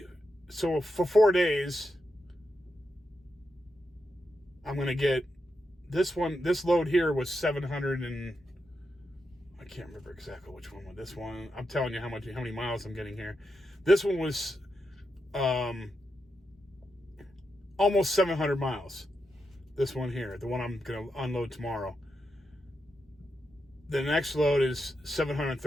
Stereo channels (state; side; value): normal; both; correlation 0.86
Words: So for 4 days, I'm going to get this load here was 700 and I can't remember exactly which one was this one. I'm telling you how many miles I'm getting here. This one was almost 700 miles. This one here, the one I'm going to unload tomorrow. The next load is